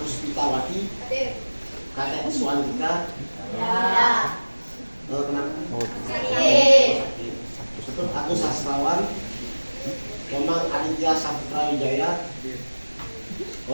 Puspitawati, Kadek Suandika. Ya. Kenapa? Sakit. Untuk Agus Sastrawan, Komang Aditya Saputra Wijaya,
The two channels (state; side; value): inverted; both; correlation -1.00